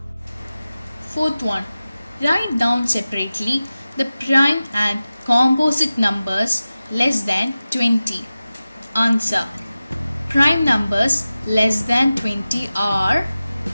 Fourth one. Write down separately the prime and composite numbers less than 20. Answer. Prime numbers less than 20 are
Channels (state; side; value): inverted; both; correlation -0.95